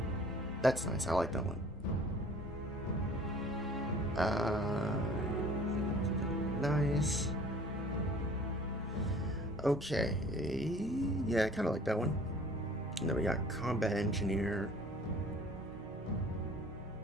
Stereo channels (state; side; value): normal; both; correlation 0.50